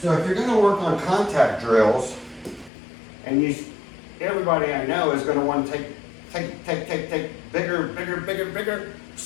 So if you're going to work on contact drills, and everybody I know is going to want to take bigger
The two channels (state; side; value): drops out; right; at 2.7 s